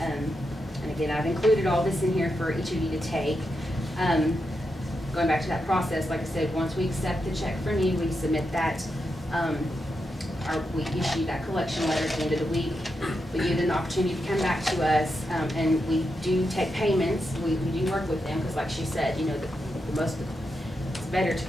again, I've included all this in here for each of you to take. Going back to that process, like I said, once we accept the check from you, we submit that, we issue that collection letter at the end of the week. We give them the opportunity to come back to us, and we do take payments. We do work with them, because like she said, you know, it's better to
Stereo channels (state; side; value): normal; both; correlation 0.86